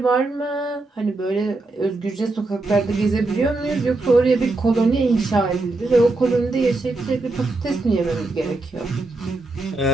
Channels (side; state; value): left; quieter; 3.2 dB